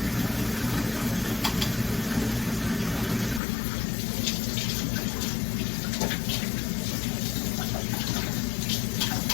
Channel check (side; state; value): right; drops out; at 3.4 s